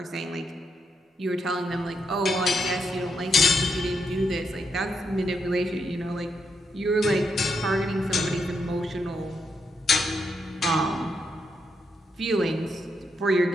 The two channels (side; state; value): both; normal; correlation 0.80